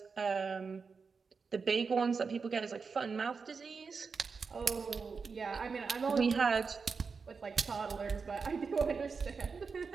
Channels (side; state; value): left; quieter; 5.1 dB